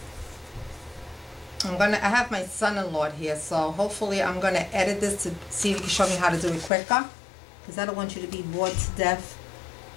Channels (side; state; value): right; drops out; at 6.7 s